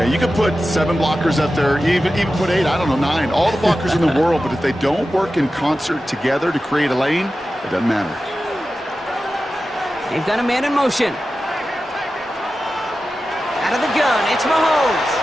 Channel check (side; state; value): both; normal; correlation 0.93